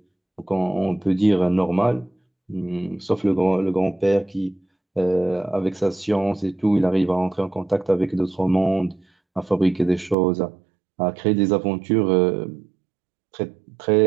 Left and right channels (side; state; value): left; drops out; at 10.2 s